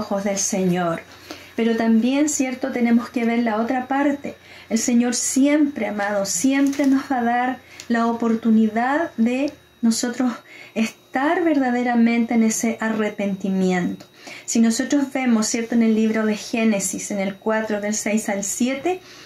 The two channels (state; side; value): identical; both; correlation 1.00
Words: del Señor. Pero también, ¿cierto?, tenemos que ver la otra parte. El Señor siempre, amado, siempre nos va a dar la oportunidad de nosotros estar verdaderamente en ese arrepentimiento. Si nosotros vemos, ¿cierto?, en el libro de Génesis, en el 4, del 6 al 7,